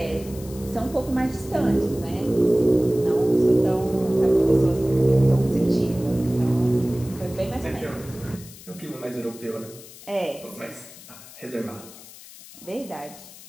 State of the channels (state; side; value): noise; left; hiss, 18 dB below the sound